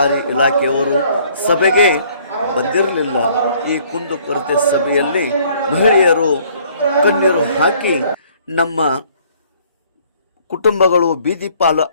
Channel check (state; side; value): inverted; both; correlation -0.60